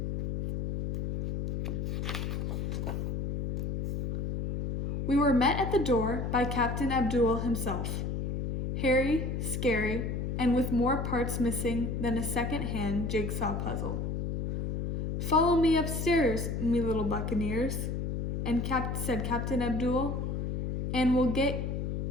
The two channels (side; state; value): left; noise; hum, 2 dB below the sound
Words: We were met at the door by Captain Abdul himself, hairy, scary, and with more parts missing than a second-hand jigsaw puzzle. Follow me upstairs, me little buccaneers, and said Captain Abdul, and we'll